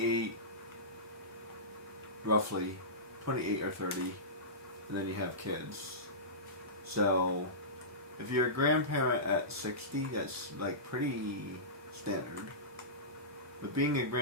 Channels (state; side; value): normal; both; correlation -0.19